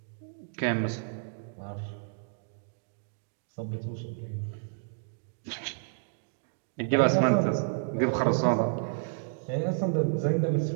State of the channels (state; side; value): silent; left; digital silence